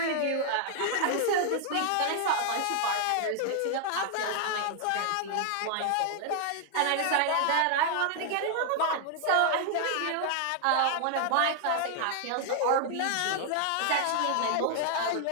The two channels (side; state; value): both; different; correlation 0.00